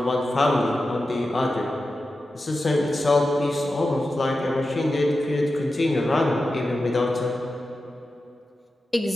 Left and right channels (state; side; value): normal; both; correlation 0.92